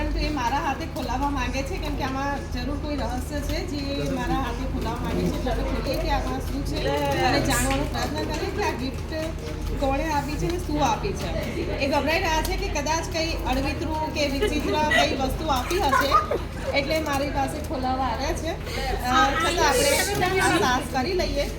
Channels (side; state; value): both; identical; correlation 1.00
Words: એ મારા હાથે ખોલાવવા માંગે છે કેમ કે આમાં જરૂર કોઈ રહસ્ય છે જે મારા હાથે ખોલાવવા માંગે છે. એટલે ખોલીએ કે આમાં શું છે અને જાણવાનો પ્રયત્ન કરીએ કે આ ગિફ્ટ કોણે આપી છે ને શું આપી છે. એ ગભરાઈ રહ્યા છે કે કદાચ કંઈ અડવિતરું કે વિચિત્ર કઈ વસ્તુ આપી હશે એટલે મારી પાસે ખોલાવવા આવ્યા છે. છતાં આપણે આ સાહસ કરી લઈએ.